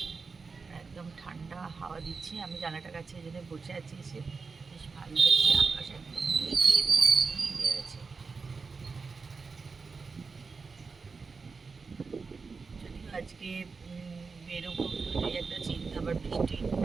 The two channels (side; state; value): left; quieter; 4.7 dB